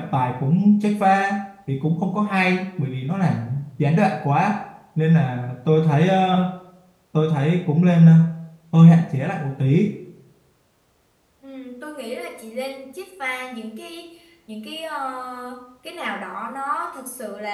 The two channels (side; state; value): both; identical; correlation 1.00